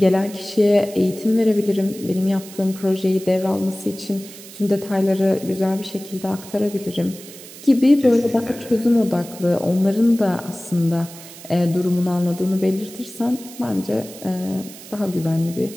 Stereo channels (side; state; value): right; noise; hiss, 17 dB below the sound